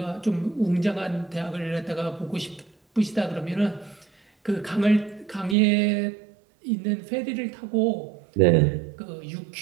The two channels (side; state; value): left; drops out; at 5.6 s